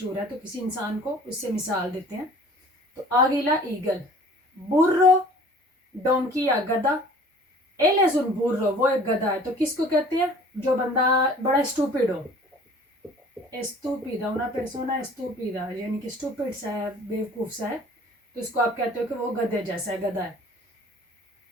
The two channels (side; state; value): both; normal; correlation 0.49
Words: है। तो किसी इंसान को उससे मिसाल देते हैं। तो आगीला ईगल। बुर्रो, डोंकी या गधा। एलेजुन बुर्रो, वो एक गधा है। तो किसको कहते हैं? जो बंदा बड़ा स्टूपिड हो, estúpida, una persona estúpida, यानी कि स्टूपिड सा है, बेवकूफ सा है, तो उसको आप कहते हो कि वो गधे जैसा है, गधा है।